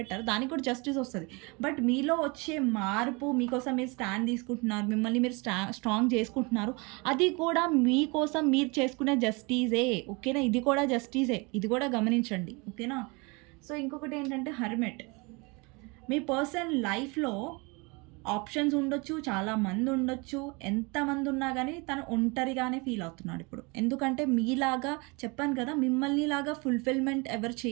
దానికి కూడా జస్టిస్ వస్తది. బట్ మీలో వచ్చే మార్పు మీకోసం మీరు స్టాండ్ తీసుకుంటున్నారు. మిమ్మల్ని మీరు స్ట్రాంగ్ చేసుకుంటున్నారు. అది కూడా మీకోసం మీరు చేసుకునే జస్టిసే. ఓకేనా? ఇది కూడా జస్టిసే. ఇది కూడా గమనించండి. ఓకేనా? సో, ఇంకొకటి ఏంటంటే హెర్మిట్. మీ పర్సన్ లైఫ్‌లో ఆప్షన్స్ ఉండొచ్చు, చాలా మంది ఉండొచ్చు. ఎంతమంది ఉన్నా గానీ తను ఒంటరిగానే ఫీల్ అవుతున్నాడు ఇప్పుడు. ఎందుకంటే మీలాగా చెప్పాను కదా! మిమ్మల్నిలాగా ఫుల్‌ఫిల్‌మెంట్ ఎవరు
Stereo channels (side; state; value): left; quieter; 28.4 dB